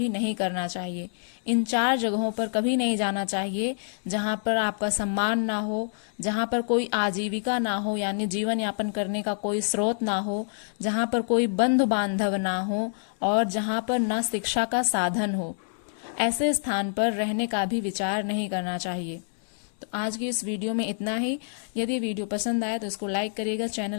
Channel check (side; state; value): right; silent; 60 dB below the other